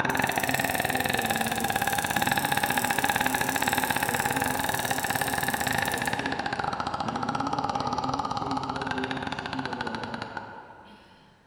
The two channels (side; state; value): both; identical; correlation 1.00